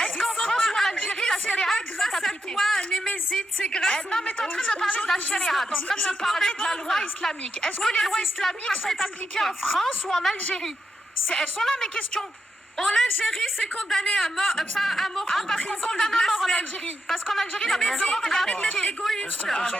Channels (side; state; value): both; normal; correlation 0.85